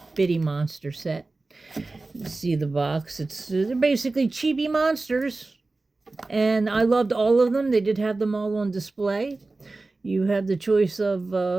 Bitty Monster set. You see the box. They're basically chibi monsters, and I loved all of them. They did have them all on display. You have the choice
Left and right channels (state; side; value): quieter; left; 3.4 dB